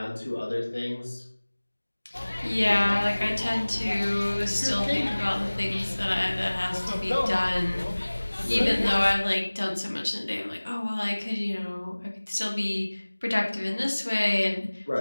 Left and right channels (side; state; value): both; inverted; correlation -1.00